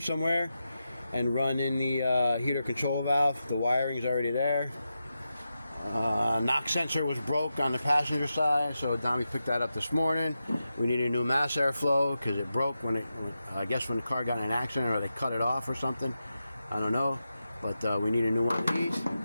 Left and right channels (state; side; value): inverted; both; correlation -0.89